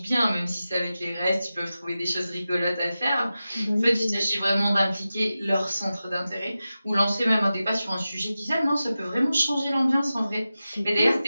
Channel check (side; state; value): both; inverted; correlation -0.94